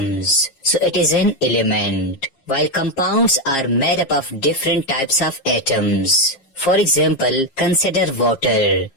so it is an element. While compounds are made up of different types of atoms. For example, consider water.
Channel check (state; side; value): late; right; 7.4 ms